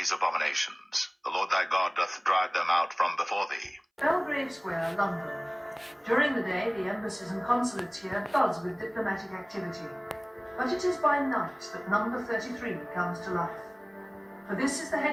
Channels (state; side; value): identical; both; correlation 1.00